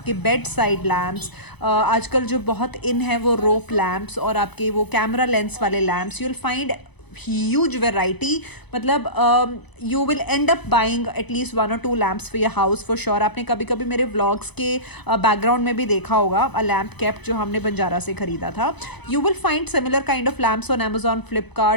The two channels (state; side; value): late; right; 0.99 ms